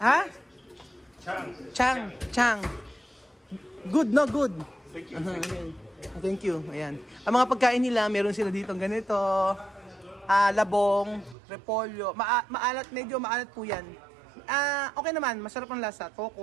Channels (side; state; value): left; drops out; at 11.4 s